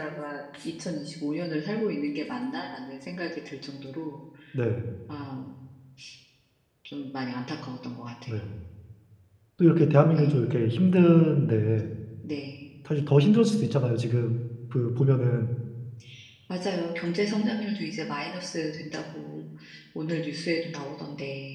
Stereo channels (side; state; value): both; identical; correlation 1.00